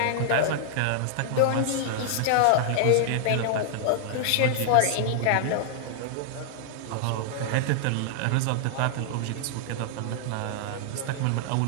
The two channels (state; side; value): different; both; correlation -0.01